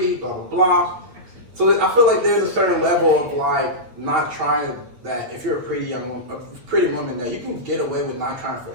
blah, blah, blah. So I feel like there's a certain level of like not trying that if you're a pretty young woman, a pretty woman, that you can get away with not trying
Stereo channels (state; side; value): late; left; 8.5 ms